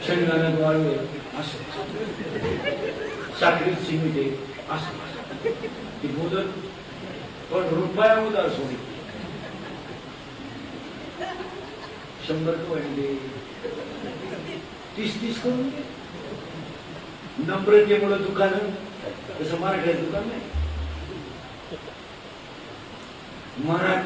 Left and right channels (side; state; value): both; identical; correlation 1.00